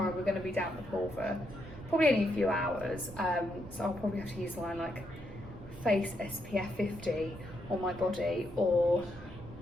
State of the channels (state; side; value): noise; right; rumble, 15 dB below the sound